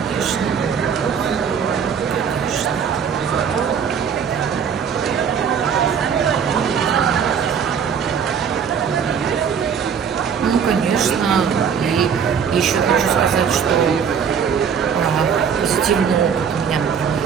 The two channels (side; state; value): left; quieter; 7.1 dB